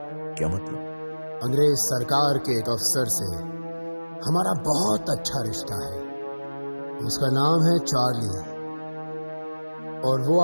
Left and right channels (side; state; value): both; inverted; correlation -1.00